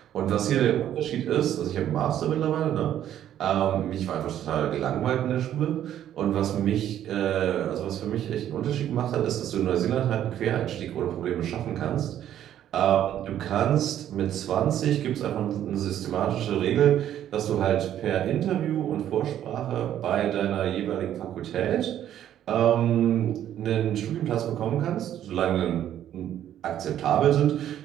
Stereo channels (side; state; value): left; quieter; 11.1 dB